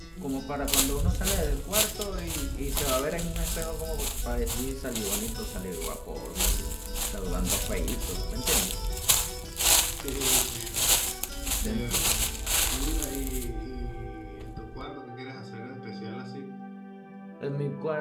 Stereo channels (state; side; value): identical; both; correlation 1.00